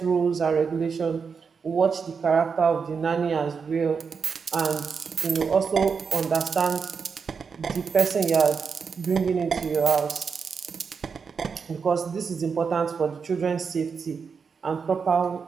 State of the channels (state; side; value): quieter; left; 5.7 dB